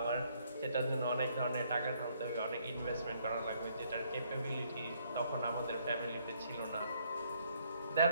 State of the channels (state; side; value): inverted; both; correlation -0.68